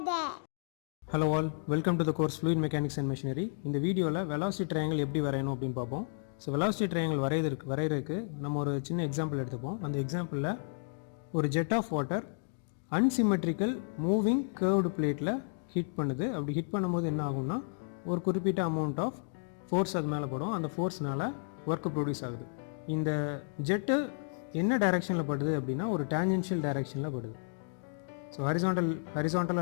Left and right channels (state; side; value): silent; right; digital silence